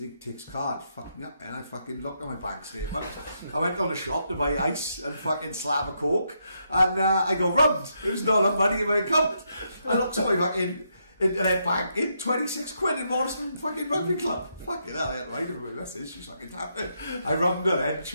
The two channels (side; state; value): both; inverted; correlation -0.79